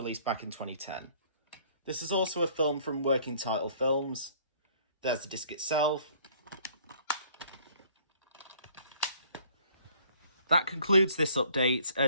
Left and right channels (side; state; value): both; inverted; correlation -0.58